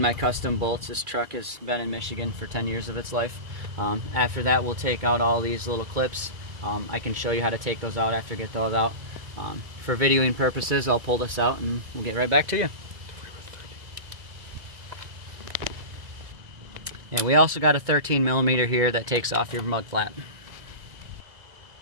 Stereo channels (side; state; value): left; late; 2.0 ms